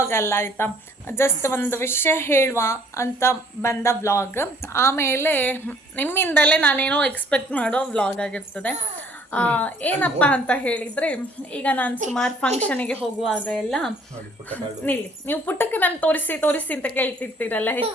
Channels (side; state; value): both; normal; correlation 0.58